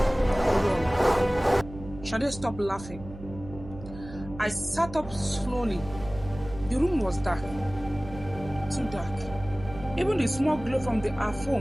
run. Sade stopped laughing. I sat up slowly. The room was dark. Too dark. Even the small glow from our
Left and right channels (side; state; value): right; noise; hum, 14 dB below the sound